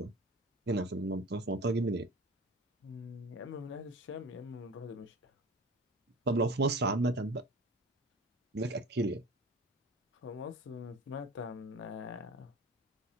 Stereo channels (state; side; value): normal; both; correlation 0.38